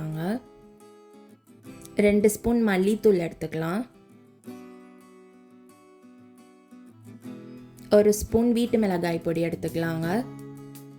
2 ஸ்பூன் மல்லித்தூள் எடுத்துக்கலாம். 1 ஸ்பூன் வீட்டு மிளகாய் பொடி எடுத்துக்கலாங்க.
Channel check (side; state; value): both; identical; correlation 1.00